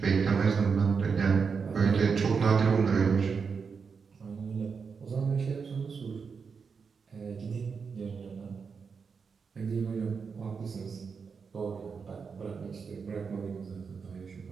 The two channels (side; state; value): left; quieter; 5.6 dB